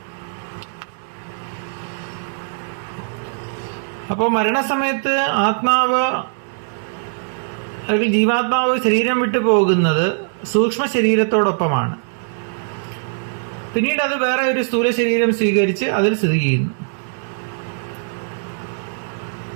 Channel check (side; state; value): left; silent; digital silence